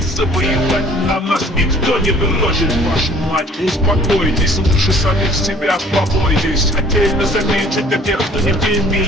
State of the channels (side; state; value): both; normal; correlation 0.54